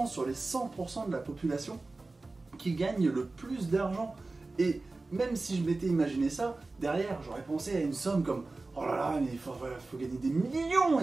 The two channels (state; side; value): quieter; left; 3.4 dB